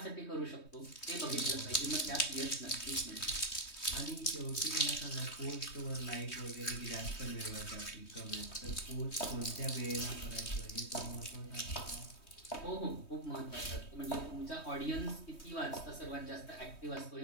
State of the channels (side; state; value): right; late; 3.2 ms